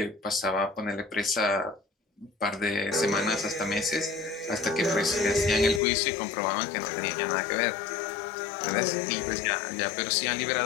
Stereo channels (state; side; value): drops out; right; at 5.8 s